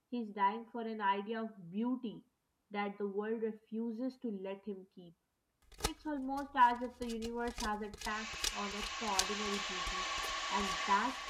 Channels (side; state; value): both; identical; correlation 1.00